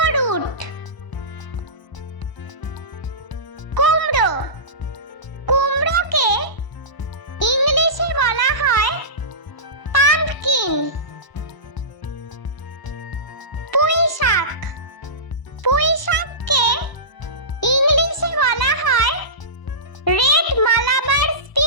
রুট। কুমড়ো। কুমড়োকে ইংলিশে বলা হয় পাম্পকিন। পুঁই শাক। পুঁই শাককে ইংলিশে বলা হয় রেড মালাবার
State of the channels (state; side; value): late; right; 1.0 ms